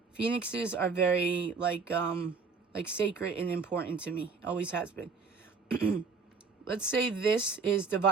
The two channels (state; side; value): quieter; left; 4.9 dB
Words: Phoenixes are very, like sacred and important to me. Always has been. Let's say this is